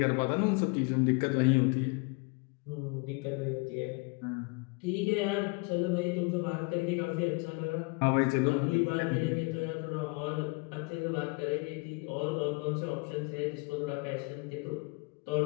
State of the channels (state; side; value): quieter; right; 30.5 dB